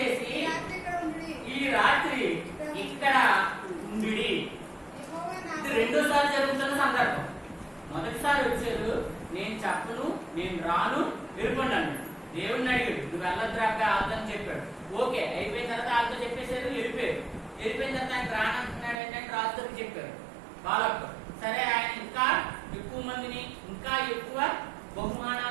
ఈ రాత్రి ఇక్కడ ఉండి. ఇది రెండోసారి జరుగుతున్న సందర్భం. మొదటిసారి వచ్చారు, నేను చెప్పను, నేను రాను, వెళ్ళిపోండి అన్నాడు. దేవుడిని అడిగాడు, నువ్వు వెళ్ళద్రాక ఆదని చెప్పాడు. ఓకే అయిపోయిన తర్వాత వాళ్ళతో చెప్పేశారు, వెళ్ళిపోయారు. వెళ్ళిపోయిన తర్వాత ఆయన రానంటున్నాడు అంటే రాజుకి చెప్పారు వాళ్ళకు. సరే ఆయన ఇంకా ఎక్కువ మందిని, ఇంకా ఎక్కువ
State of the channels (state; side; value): drops out; left; at 18.9 s